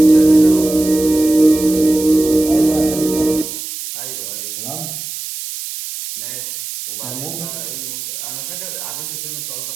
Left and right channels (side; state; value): right; noise; hiss, 8 dB below the sound